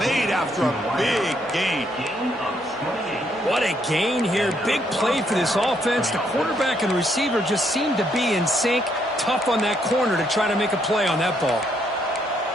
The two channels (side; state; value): both; normal; correlation 0.72